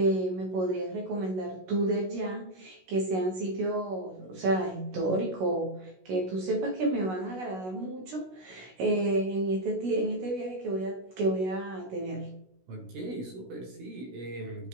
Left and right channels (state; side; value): late; left; 16 ms